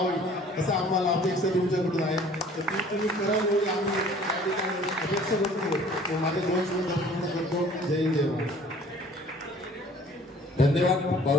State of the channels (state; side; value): normal; both; correlation 0.52